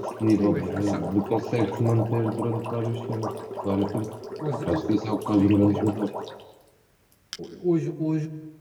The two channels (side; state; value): both; identical; correlation 1.00